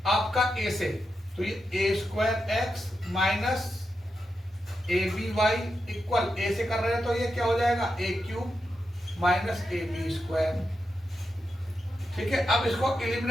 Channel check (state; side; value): normal; both; correlation 0.87